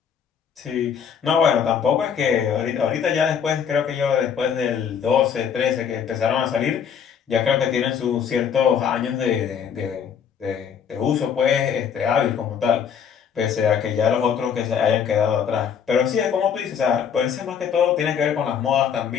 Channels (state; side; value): quieter; right; 7.6 dB